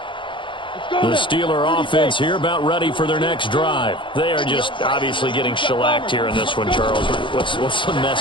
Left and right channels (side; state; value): right; late; 0.24 ms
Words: The Steeler offense here about ready for their next drive. They are just obviously getting shellacked here in this one, Charles. What's the